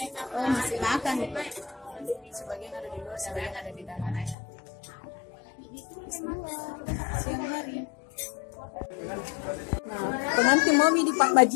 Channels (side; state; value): right; drops out; at 4.4 s